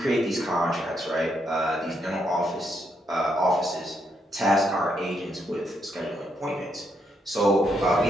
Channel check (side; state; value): both; normal; correlation 0.77